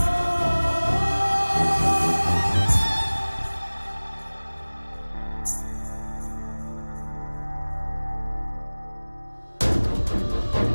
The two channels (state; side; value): inverted; both; correlation -1.00